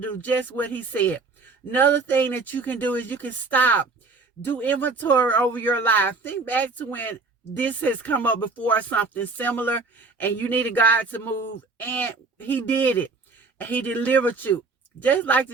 just what he said. Another thing that you can do is you can stop. Do inventory over your life. Think back to when this has come up before, something similar, and you needed God to move, and he did it. And he delivered you. Just like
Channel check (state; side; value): quieter; left; 4.0 dB